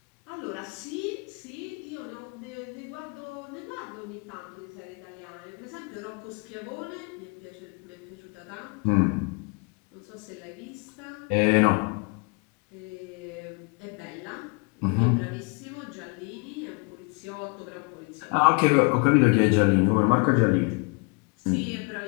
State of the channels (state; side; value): quieter; right; 33.1 dB